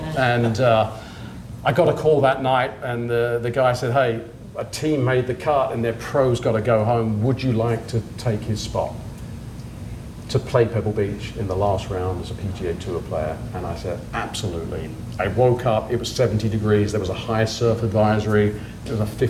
And I got a call that night, and the guy said, hey, a team made the cut and their pro's got to go home. Would you like to take his spot to play Pebble Beach in the last round as a PGA Tour player? And I said, absolutely. I woke up, it was 70 degrees, there was a high surf advisory, there was a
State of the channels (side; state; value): both; identical; correlation 1.00